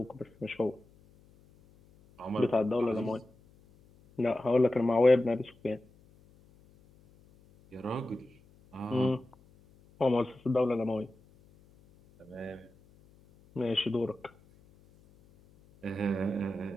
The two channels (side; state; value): left; noise; hum, 28 dB below the sound